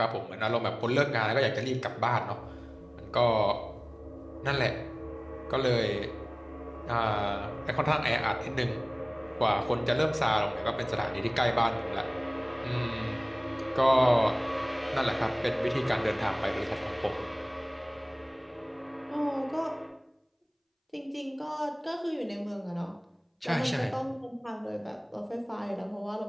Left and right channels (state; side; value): identical; both; correlation 1.00